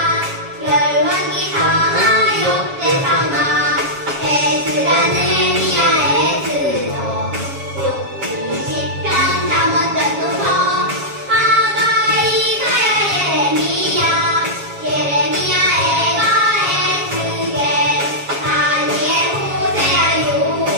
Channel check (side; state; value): left; late; 7.3 ms